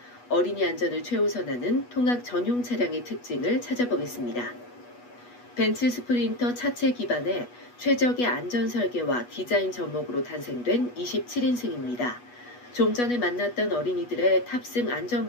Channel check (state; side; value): late; right; 8.2 ms